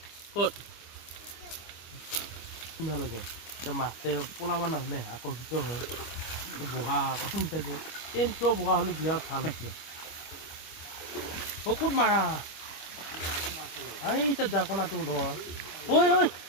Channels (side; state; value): right; late; 25 ms